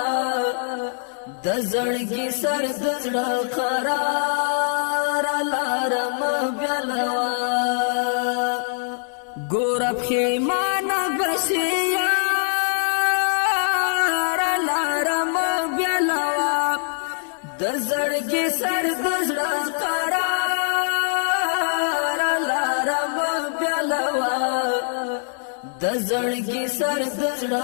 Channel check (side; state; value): right; silent; 61 dB below the other